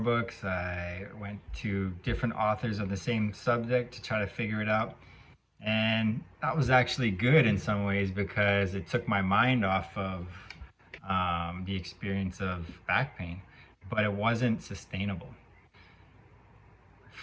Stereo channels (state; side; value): identical; both; correlation 1.00